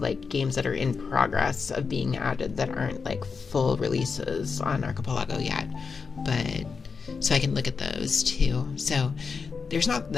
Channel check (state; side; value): quieter; right; 5.2 dB